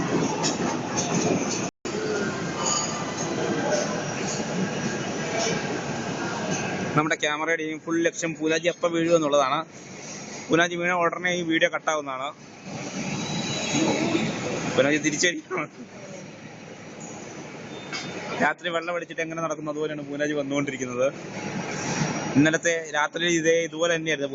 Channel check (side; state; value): both; identical; correlation 1.00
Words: നമ്മുടെ ക്യാമറയുടെയും ഫുൾ ലക്ഷ്യം പൂനാജി എപ്പോൾ വീഴുക എന്നുള്ളതാണ്. പൂനാജി വീണ ഉടനെ ഈ വീഡിയോ കട്ടാവുന്നതാണ്. പൂനാജി തിരിച്ചടിക്കണം. രാത്രി വെള്ളം അടിച്ചിട്ട് എങ്ങനെ നടക്കുന്നു അതുപോലെയാണ് പൂനാജി വന്നുകൊണ്ടിരിക്കുന്നത്. ഇന്നലത്തെ രാത്രി ഇതുപോലെ തന്നെയായിരുന്നു.